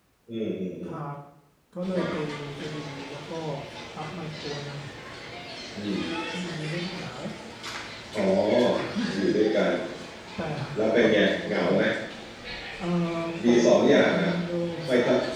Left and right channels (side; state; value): both; identical; correlation 1.00